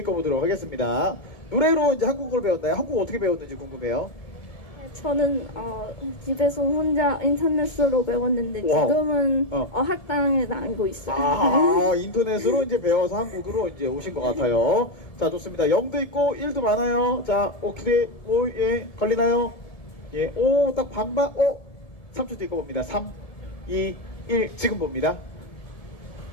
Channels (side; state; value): right; late; 1.7 ms